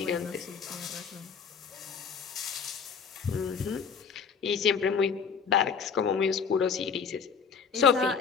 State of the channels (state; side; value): quieter; right; 6.3 dB